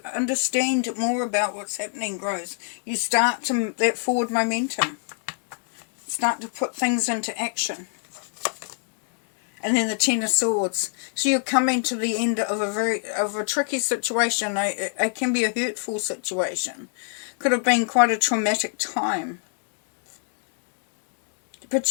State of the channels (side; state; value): right; silent; digital silence